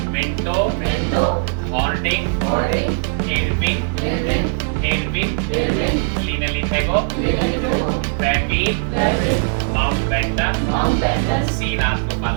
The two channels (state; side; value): silent; left; digital silence